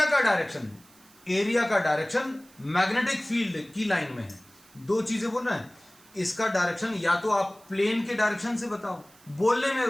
का डायरेक्शन, एरिया का डायरेक्शन मैग्नेटिक फील्ड की लाइन में है। दो चीजें बोल रहे हैं, इसका डायरेक्शन या तो आप प्लेन के डायरेक्शन से बताओ, बोलने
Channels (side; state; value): right; noise; hiss, 27 dB below the sound